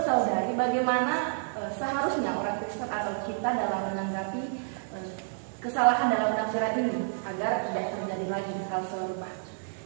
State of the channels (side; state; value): left; silent; digital silence